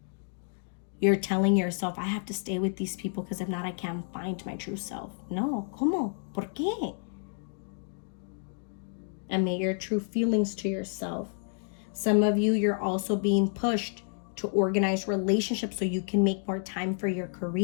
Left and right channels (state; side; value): silent; right; 58 dB below the other